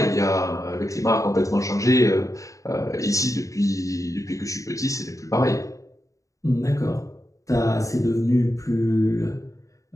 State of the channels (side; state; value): right; late; 0.16 ms